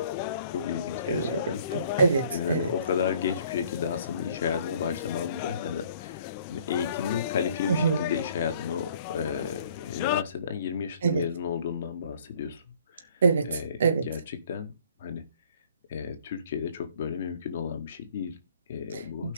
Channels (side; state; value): both; inverted; correlation -0.58